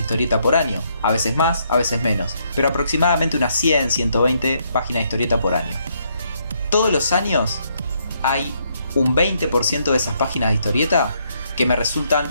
historieta por año. A veces más, a veces menos. Pero aproximadamente unas 100, 120 páginas de historieta por año. Todos los años hay un 20% de esas páginas de historieta que me resultan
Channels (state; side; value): inverted; both; correlation -0.73